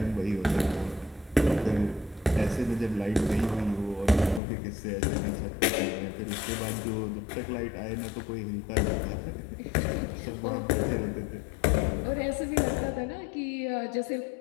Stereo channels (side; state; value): right; drops out; at 4.4 s